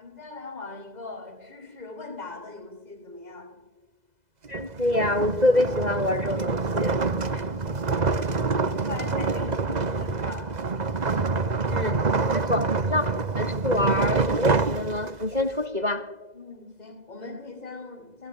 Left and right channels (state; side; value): late; left; 2.0 ms